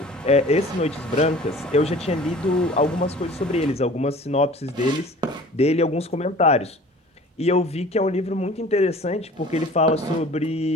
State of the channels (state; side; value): normal; both; correlation 0.45